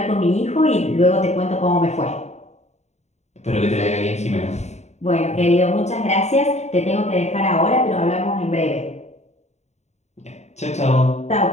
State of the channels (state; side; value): late; right; 0.32 ms